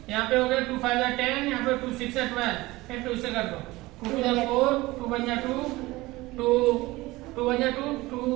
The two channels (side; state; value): left; quieter; 20.0 dB